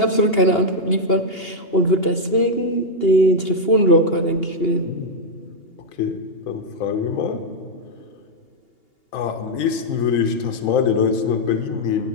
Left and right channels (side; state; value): right; late; 2.8 ms